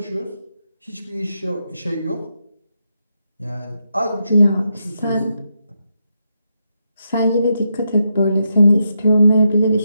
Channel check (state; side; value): inverted; both; correlation -0.83